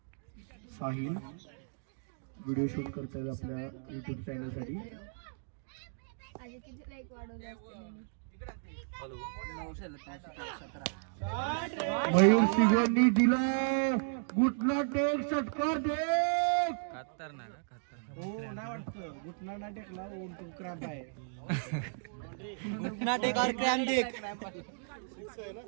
साहिल व्हिडिओ शूट करतायत आपल्या युट्यूब चॅनल साठी. मयूर सिंगांनी दिला गुटला टेक षटकार देख. हो नाही वाटतं घुटना नाही टेकला क्रॅम्प आहे. नाटेक और क्रॅम देख.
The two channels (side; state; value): left; silent; digital silence